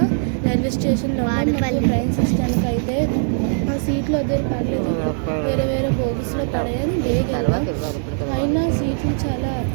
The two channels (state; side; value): silent; left; digital silence